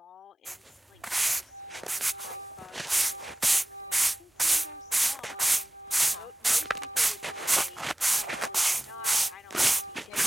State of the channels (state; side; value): normal; both; correlation 0.95